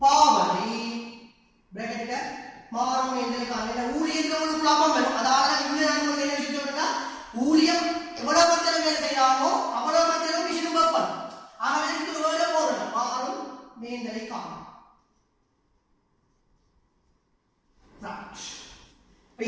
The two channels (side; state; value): both; identical; correlation 1.00